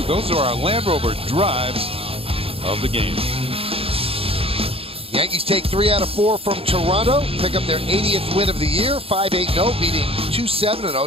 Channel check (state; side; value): late; left; 0.27 ms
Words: Those are our Land Rover drives of the game. Yankees take 3 out of 4 from Toronto, pick up their 80th win of the year, 5-8-0, beating